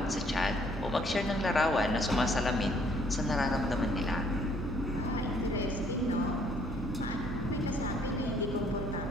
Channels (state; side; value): normal; both; correlation 0.63